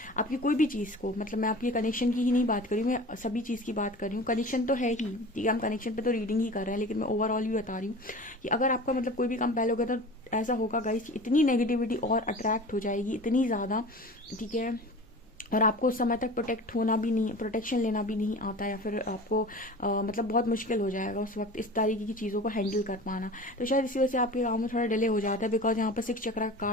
आपकी कोई भी चीज़ को, मतलब मैं आपकी कनेक्शन की ही नहीं बात कर रही हूँ, मैं सभी चीज़ की बात कर रही हूँ। कनेक्शन तो है ही, ठीक है, हम कनेक्शन पे तो रीडिंग ही कर रहे हैं, लेकिन मैं ओवरऑल भी बता रही हूँ कि अगर आपका मतलब कोई भी काम पहले हो गया तो ऐसा होगा गाइस, इतनी नेगेटिविटी और अट्रैक्ट हो जाएगी, इतनी ज़्यादा, ठीक है, और आपको उस समय तक प्रोटेक्शन लेना भी नहीं आता, या फिर आपको मतलब बहुत मुश्किल हो जाएगा उस वक्त इस तरीके की चीज़ों को हैंडल कर पाना। तो शायद इसी वजह से आपके काम में थोड़ा डिले हो जाता है, बिकॉज यहाँ पर 6 चक्र का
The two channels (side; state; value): both; normal; correlation 0.38